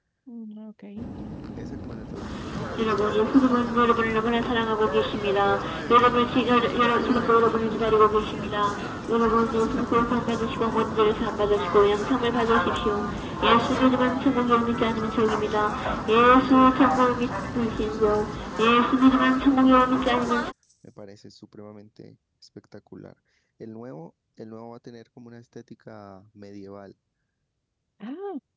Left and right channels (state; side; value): identical; both; correlation 1.00